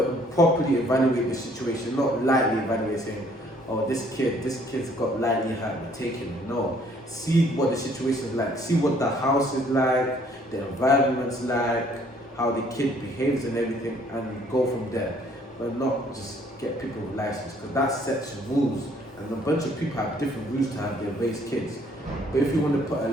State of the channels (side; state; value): both; normal; correlation 0.62